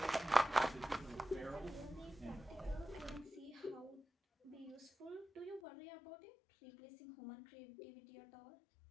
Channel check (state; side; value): drops out; right; at 5.6 s